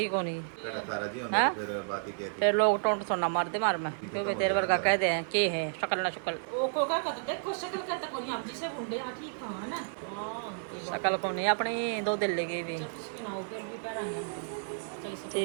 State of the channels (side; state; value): left; silent; 57 dB below the other